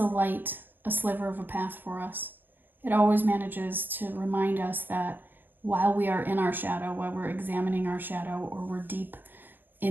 light a sliver of a path for us. It always manages to remind us that while we are in our shadow, while we're examining our shadow, or we're deep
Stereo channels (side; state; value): left; late; 0.092 ms